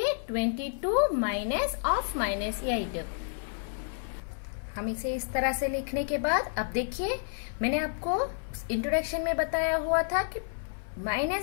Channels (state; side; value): silent; right; 58 dB below the other